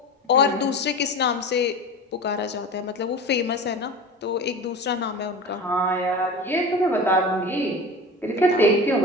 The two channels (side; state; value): both; normal; correlation 0.32